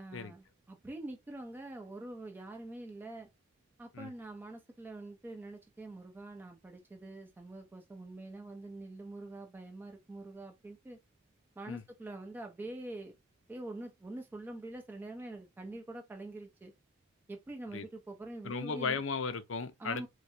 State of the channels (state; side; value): normal; both; correlation 0.38